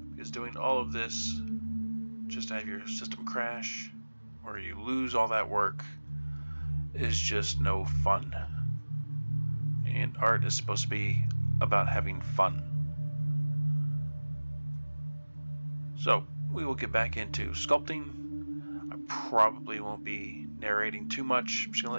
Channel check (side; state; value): both; inverted; correlation -1.00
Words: Because doing all of this just to have your system crash or you lose all that work is just no fun. And art is supposed to be about having fun. So we will get back into sculpting. I probably won't be narrating too much. I'm just going to